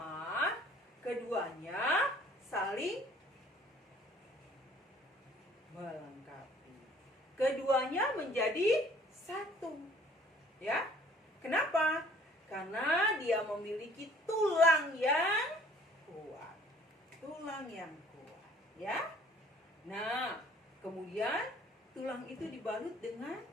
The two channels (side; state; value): both; normal; correlation 0.56